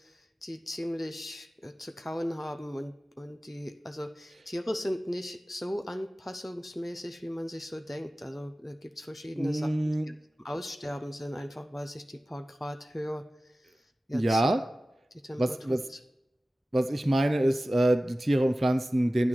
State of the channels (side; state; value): both; normal; correlation 0.96